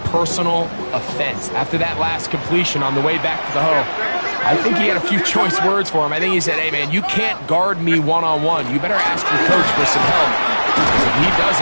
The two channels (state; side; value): inverted; both; correlation -1.00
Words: personal offense. After that last completion on the way back to the hole, I think he had a few choice words for him. I think he said, hey, man, you can't guard me one-on-one. You better ask your coach for some help. Because if he